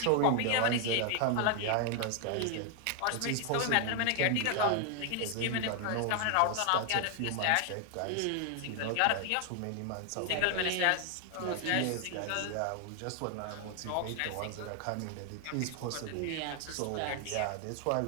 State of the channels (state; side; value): different; both; correlation 0.00